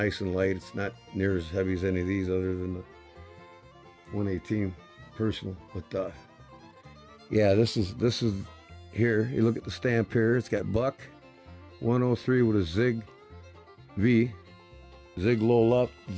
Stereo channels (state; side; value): identical; both; correlation 1.00